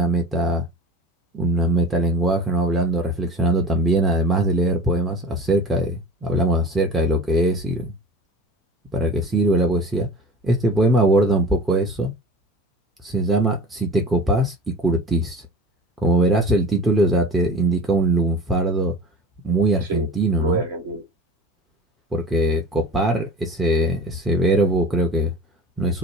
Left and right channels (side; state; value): both; normal; correlation 0.36